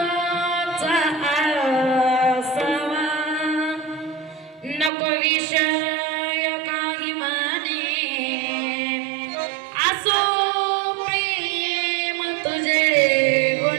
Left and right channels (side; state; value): left; drops out; at 4.9 s